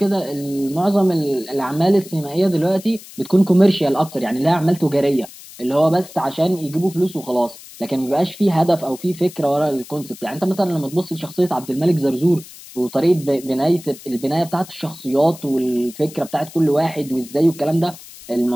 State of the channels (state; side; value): noise; left; hiss, 18 dB below the sound